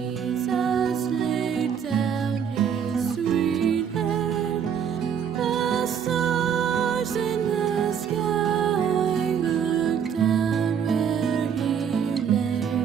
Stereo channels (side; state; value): left; quieter; 7.7 dB